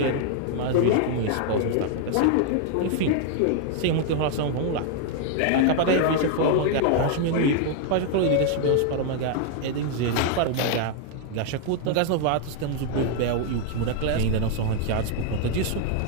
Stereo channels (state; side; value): different; both; correlation 0.00